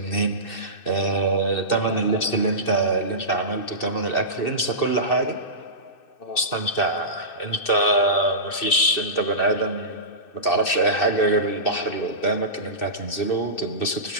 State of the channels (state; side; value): late; right; 2.6 ms